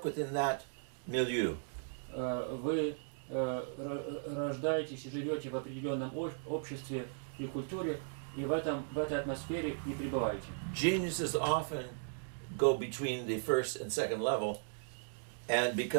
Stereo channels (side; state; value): left; silent; digital silence